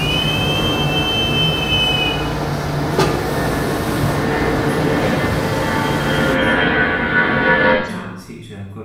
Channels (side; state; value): both; identical; correlation 1.00